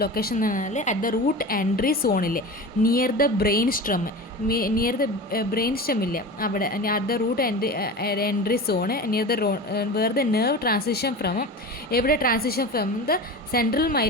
ലൊക്കേഷൻ എന്ന് പറഞ്ഞാൽ അറ്റ് ദ റൂട്ട് എൻട്രി സോണിൽ, നിയർ ദ ബ്രെയിൻ സ്റ്റെം ഇല്ല അവിടെ, at the root entry zone, near the where the nerve transition from, എവിടെ transition from the central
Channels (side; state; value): both; normal; correlation 0.31